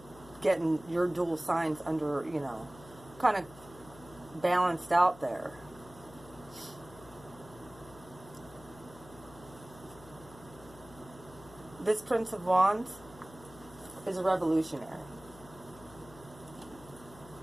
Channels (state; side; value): noise; left; hum, 19 dB below the sound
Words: getting your dual signs under, you know, kind of balanced out there. This Prince of Wands is a revolutionary.